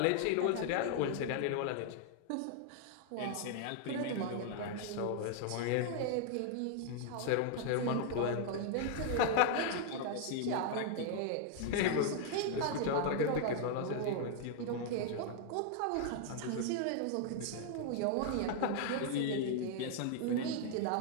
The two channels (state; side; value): different; both; correlation -0.01